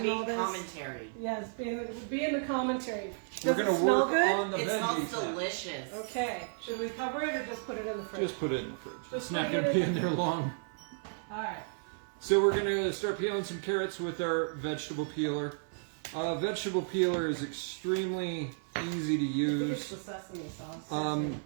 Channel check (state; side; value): silent; left; 56 dB below the other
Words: all being this. commentary. Yes, be in the commentary. We're Does it gonna smell work good? on the It smells veggies. now. delicious. Okay. Should we cover it or just put it in the fridge? Just put it in the fridge. Just It's not put it gonna be in- in there long. All right. So we're gonna start peeling some carrots with our vegetable peeler. Vegetable peeler is extremely easy to I think it's use. the sesame sauce.